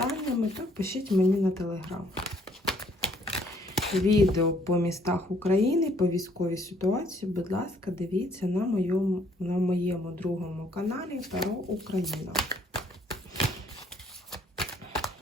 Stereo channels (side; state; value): both; normal; correlation 0.64